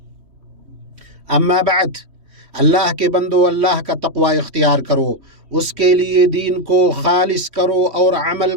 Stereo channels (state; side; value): late; left; 3.1 ms